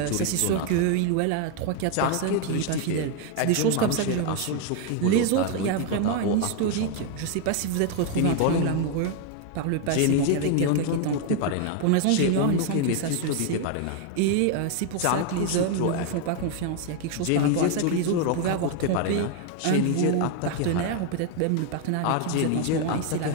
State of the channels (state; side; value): different; both; correlation 0.01